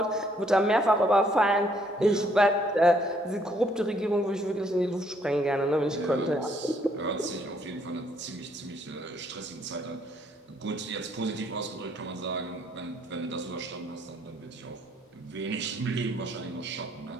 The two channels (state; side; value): normal; both; correlation 0.67